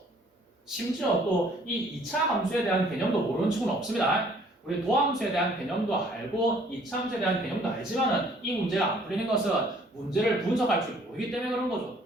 심지어 또 이 2차 함수에 대한 개념도 모르는 친구는 없습니다. 우리 도함수에 대한 개념도 알고 2차 함수에 대한 개념도 알지만은 이 문제가 안 풀리는 것은 문제를 분석할 줄 모르기 때문에 그런 거죠.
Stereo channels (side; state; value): both; normal; correlation 0.59